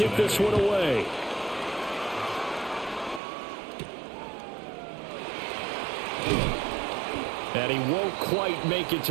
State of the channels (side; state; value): left; drops out; at 3.2 s